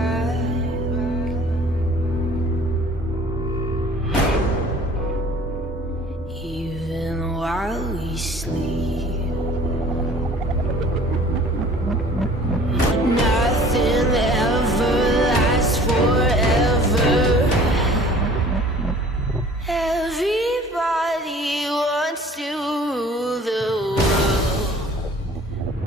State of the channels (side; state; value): both; normal; correlation 0.50